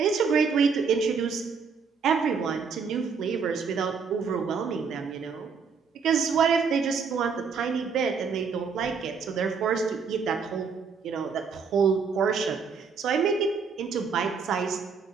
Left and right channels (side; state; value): left; quieter; 5.6 dB